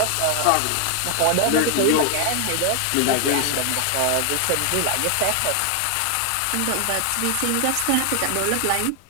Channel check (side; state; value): both; different; correlation 0.00